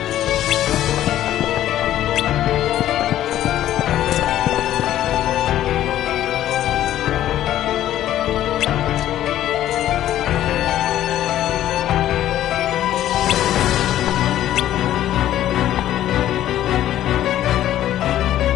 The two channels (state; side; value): quieter; right; 12.6 dB